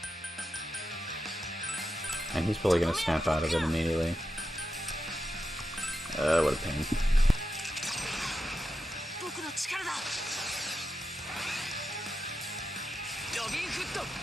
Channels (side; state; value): both; normal; correlation 0.88